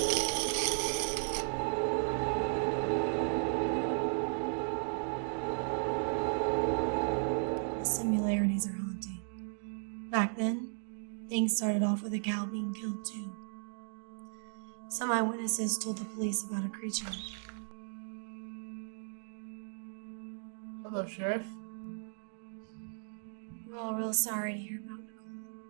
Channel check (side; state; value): left; silent; digital silence